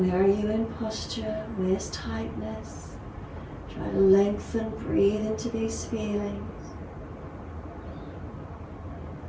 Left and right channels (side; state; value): both; identical; correlation 1.00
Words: are you in posture? Where's tightness? Try to lengthen, breathe into these feelings.